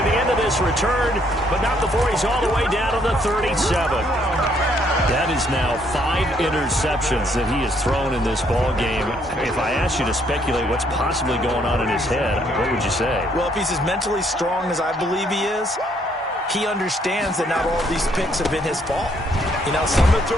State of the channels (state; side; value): normal; both; correlation 0.69